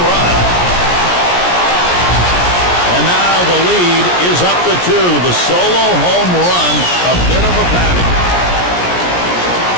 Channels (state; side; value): late; right; 17 ms